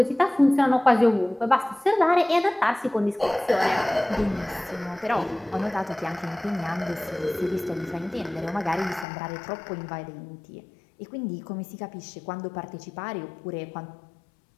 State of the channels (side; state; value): right; drops out; at 9.1 s